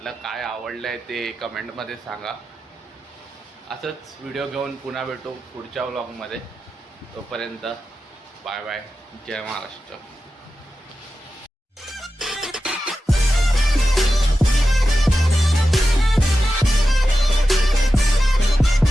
काय आवडलं आहे ते कमेंटमध्ये सांगा. असंच व्हिडिओ घेऊन पुन्हा भेटू पुढच्या व्लॉगमध्ये. तोपर्यंत बाय बाय, जय महाराष्ट्र.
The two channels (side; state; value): both; normal; correlation 0.92